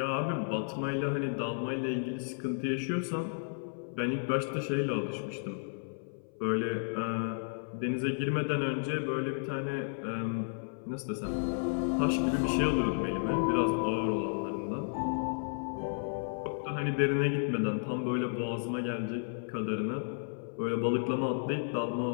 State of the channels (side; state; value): right; silent; 56 dB below the other